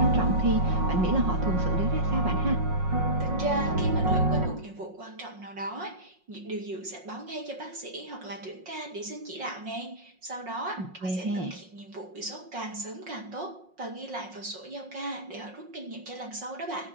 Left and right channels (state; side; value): late; left; 5.5 ms